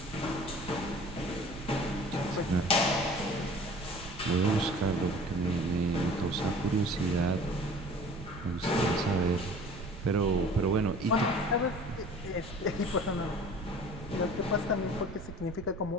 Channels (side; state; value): right; noise; rumble, 13 dB below the sound